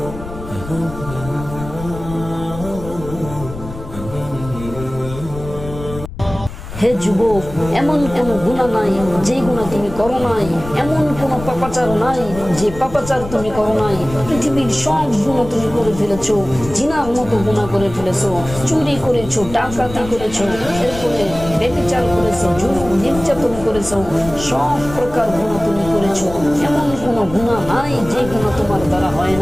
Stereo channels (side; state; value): left; noise; rumble, 12 dB below the sound